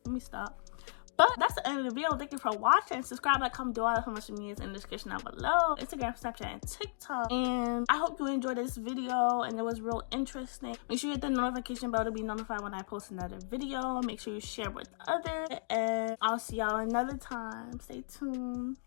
Let me stop. But that's the end of the video. Thank you for watching. Subscribe, like, comment, do all that for much of me is in the description down below. Instagram, Snapchat, and TikTok. And I hope you enjoyed this video and it was real interesting. Make sure you hit the notification bell to be notified when I post another video. Make sure you share with others. And I'll see y'all another time. Stay tuned.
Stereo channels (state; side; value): silent; right; digital silence